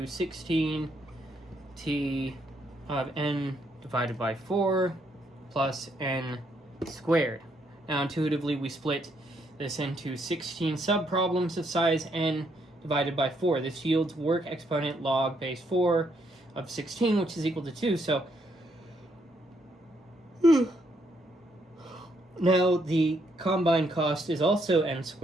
16 T of n divided by 4 plus n squared. Now intuitively we split this into 16 subproblems of size n divided by 4. This yields work exponent log base 4 of 16, which is equal to 2. So now the combined cost is also n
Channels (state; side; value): normal; both; correlation 0.74